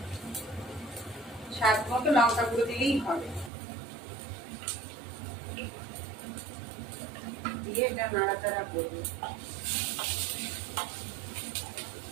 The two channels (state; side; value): drops out; left; at 3.5 s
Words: স্বাদ মতো লঙ্কা গুঁড়ো দিলেই হবে। দিয়ে এটা নাড়াচাড়া করবো।